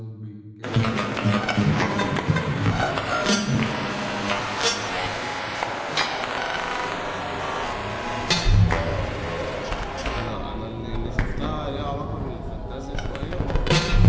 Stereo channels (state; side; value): identical; both; correlation 1.00